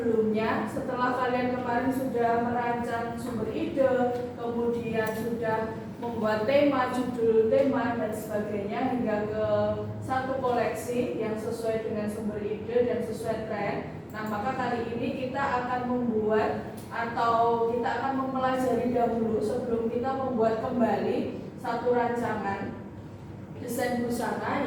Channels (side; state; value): both; identical; correlation 1.00